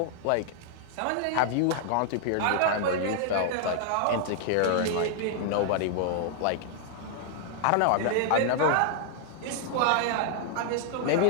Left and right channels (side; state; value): both; different; correlation 0.00